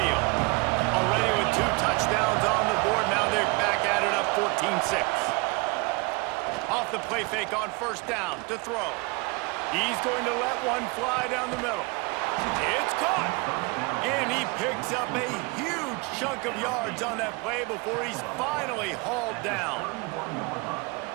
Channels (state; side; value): quieter; left; 28.4 dB